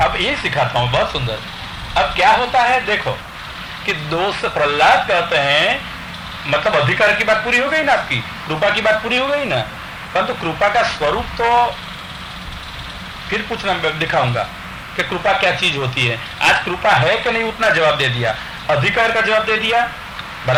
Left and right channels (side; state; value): both; identical; correlation 1.00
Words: ये सिखाता हूं, बहुत सुंदर। अब क्या होता है देखो कि 2 से प्रहलाद कहते हैं, मतलब अधिकार की बात पूरी हो गई ना, आपकी कृपा की बात पूरी हो गई ना, परंतु कृपा का स्वरूप तो फिर पूछना दिखाऊंगा कि कृपा क्या चीज होती है। आज कृपा है कि नहीं उतना जवाब दे दिया, अधिकार का जवाब दे दिया,